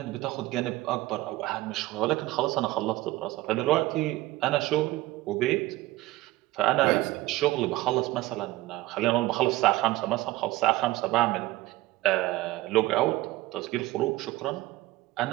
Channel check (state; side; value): quieter; left; 17.7 dB